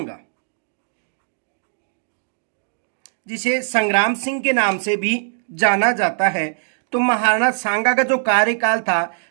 जिसे संग्राम सिंह के नाम से भी जाना जाता है, तो महाराणा सांगा का जो कार्यकाल था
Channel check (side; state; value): left; silent; digital silence